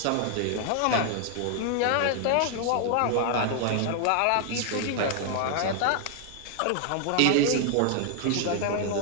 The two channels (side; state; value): both; different; correlation 0.00